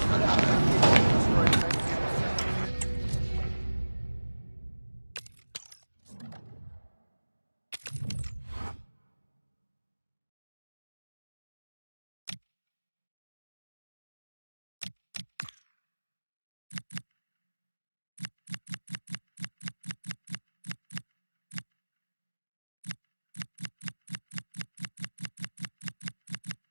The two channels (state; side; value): inverted; both; correlation -1.00